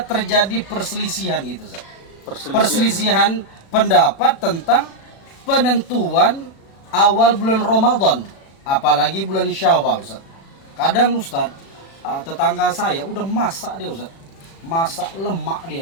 terjadi perselisihan gitu Ustadz. Perselisihan pendapat tentang penentuan awal bulan Ramadan, apalagi bulan Syawal Ustadz. Kadang Ustadz, tetangga saya udah masak dia Ustadz, masak lemak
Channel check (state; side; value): late; right; 36 ms